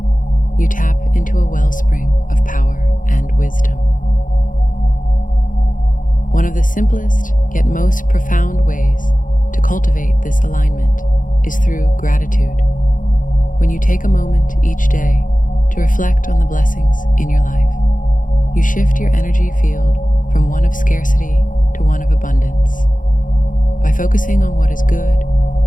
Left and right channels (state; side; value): late; right; 0.38 ms